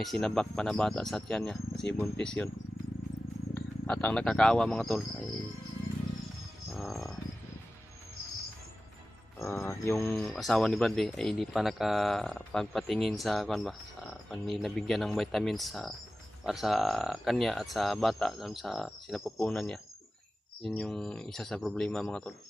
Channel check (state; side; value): normal; both; correlation 0.95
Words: sinabak pa na bata sa tiyan niya kasi buntis yun. At ang nakakaawa mga tol ay yung asawa ni Bradley ay hindi pa nakapagpatingin sa nabigyan ng vitamins para sa kanya at sa bata sa sinapupunan niya. Yun yung isa sa problema mga tol.